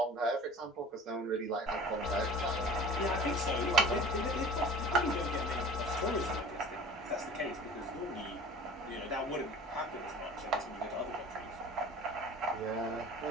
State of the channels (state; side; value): normal; both; correlation 0.42